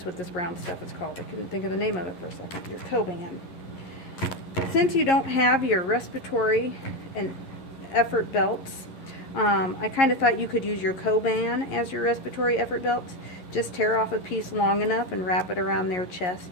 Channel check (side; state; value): right; late; 11 ms